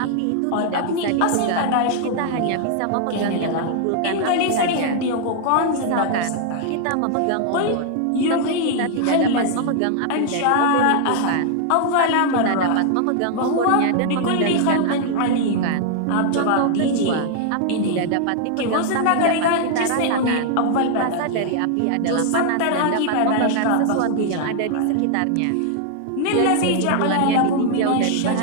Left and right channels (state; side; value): different; both; correlation 0.00